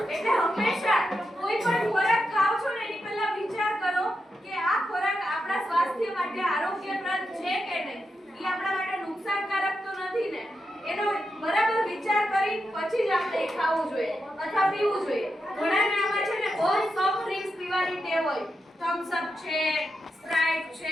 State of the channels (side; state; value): both; normal; correlation 0.86